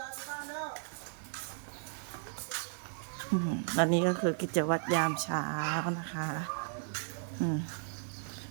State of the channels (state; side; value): silent; left; digital silence